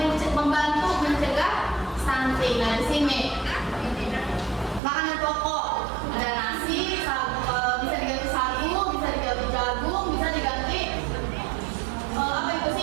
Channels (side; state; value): left; drops out; at 4.8 s